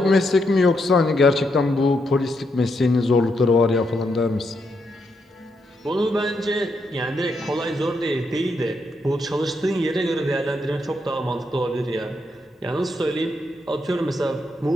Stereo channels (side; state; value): both; normal; correlation 0.80